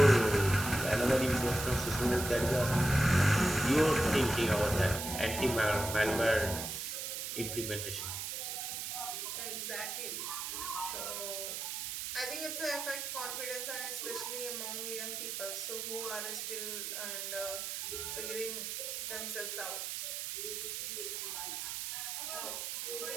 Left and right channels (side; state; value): right; noise; hiss, 4 dB below the sound